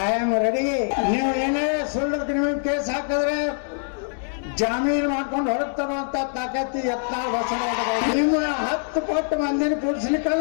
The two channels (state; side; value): silent; right; 59 dB below the other